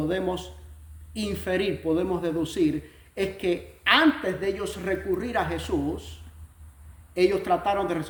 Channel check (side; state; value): both; identical; correlation 1.00